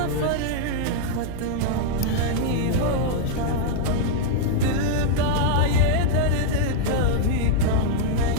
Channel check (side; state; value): both; different; correlation -0.01